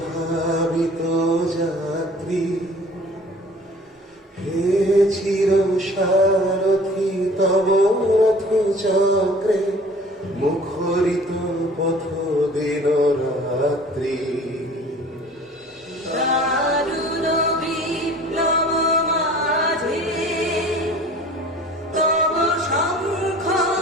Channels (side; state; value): both; normal; correlation 0.48